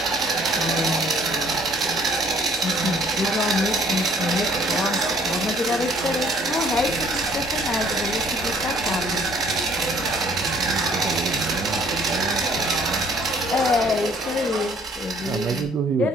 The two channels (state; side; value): normal; both; correlation 0.59